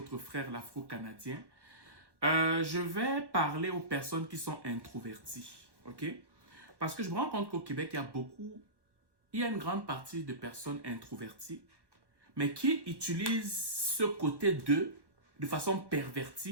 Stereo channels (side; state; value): left; late; 1.1 ms